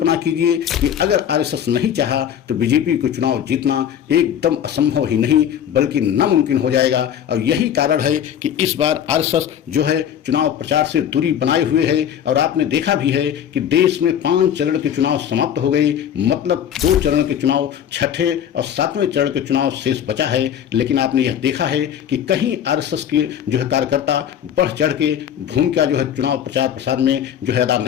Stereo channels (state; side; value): quieter; right; 9.4 dB